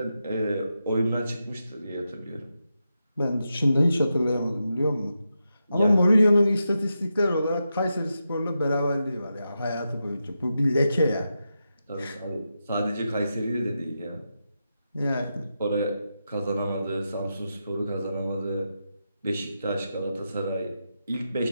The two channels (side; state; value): both; inverted; correlation -0.87